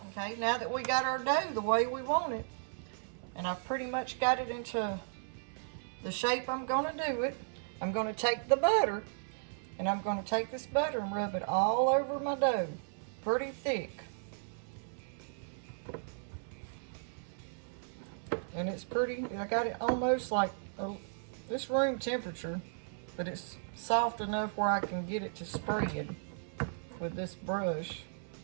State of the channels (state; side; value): silent; left; 54 dB below the other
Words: Okay, now that we got our dough the way we want it, and I've pretty much got it into the shape I'm going to do it, I'm going to take the butter, and I'm going to take this butter and rub it all over my dough, pretty thick. And it's pretty, I got it almost like this room temperature, but it's soft enough where I can get it to spread with this brush.